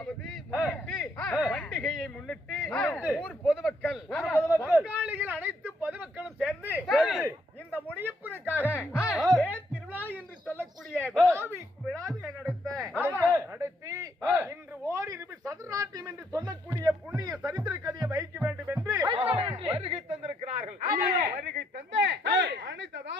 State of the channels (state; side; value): normal; both; correlation 0.73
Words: பண்டிகையை முன்னிட்டு ஊர் பொதுமக்கள் பங்காளிகள் அனைத்து பொதுமக்களும் சேர்ந்து இந்த முனியப்பனுக்காக திருவிழா என்று சொல்லக்கூடிய விழாவை நடத்தி இன்று ஓரிரு சதுராட்டியம் என்று சொல்லக்கூடிய புண்ணிய சரித்திர கதையை வைக்க வேண்டும் என்று வருகை தந்திருக்கிறார்கள். வருகை தந்த அனைத்து